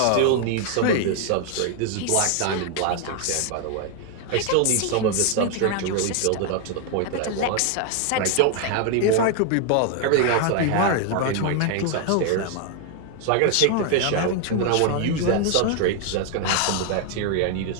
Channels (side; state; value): both; different; correlation 0.01